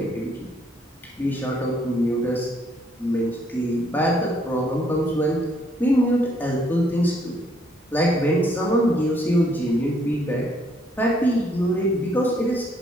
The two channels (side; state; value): both; normal; correlation 0.68